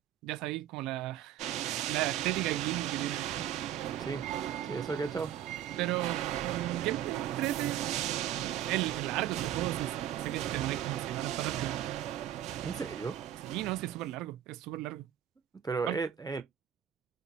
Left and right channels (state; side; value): quieter; left; 11.3 dB